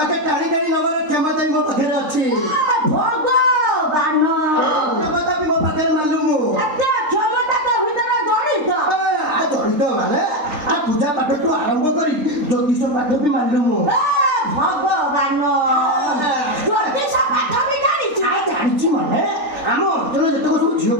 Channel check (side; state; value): left; late; 3.3 ms